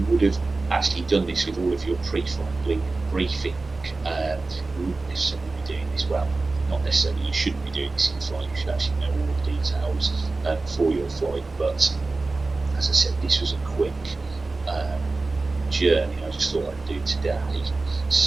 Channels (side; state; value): left; quieter; 3.5 dB